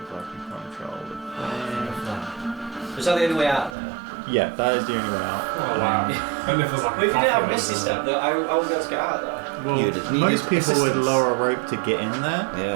If I can control the thing. Is that the only way out there? Yeah, that is the only way out. Oh, wow. And if there's like Well, if you didn't have Misty Step, I wouldn't be able to get out of there. Well, You'd need most people would assistance. lower a rope to get in there. Yeah,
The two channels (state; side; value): drops out; left; at 3.8 s